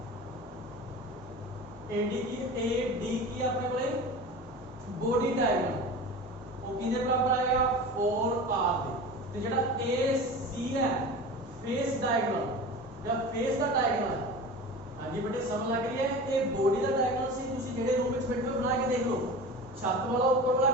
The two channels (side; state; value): both; normal; correlation 0.33